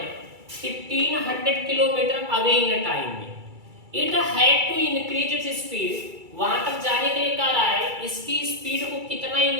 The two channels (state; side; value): late; left; 2.3 ms